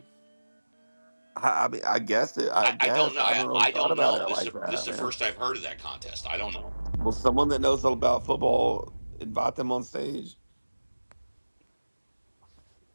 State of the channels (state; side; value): inverted; both; correlation -1.00